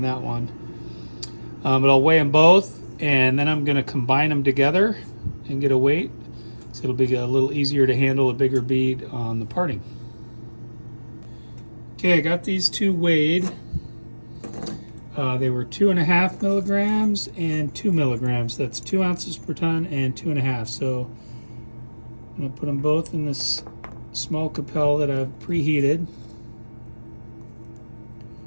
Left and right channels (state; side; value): inverted; both; correlation -1.00